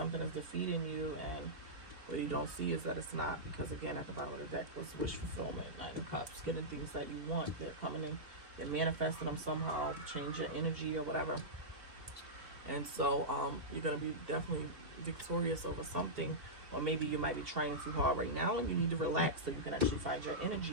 is defeating you, and what you don't see is that it's not, because again, at the bottom of the deck was wish fulfillment. Nine of Cups, getting things that you want. They're coming in, they're manifesting them somehow, change your energy or whatever. And so you're going to be definitely victorious over something, or maybe you might be trying too hard right now and you need to relax so you can actually find your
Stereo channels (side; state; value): left; late; 3.1 ms